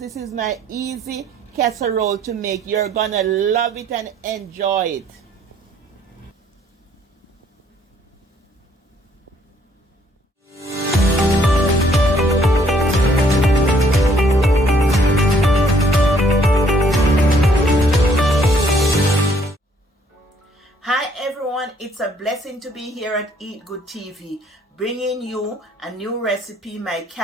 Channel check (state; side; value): normal; both; correlation 0.64